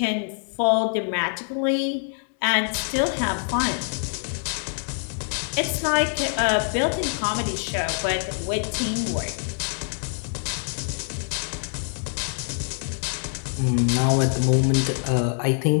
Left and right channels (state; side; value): silent; right; 57 dB below the other